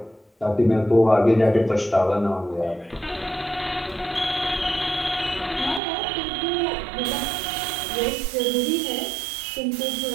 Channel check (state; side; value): drops out; left; at 5.8 s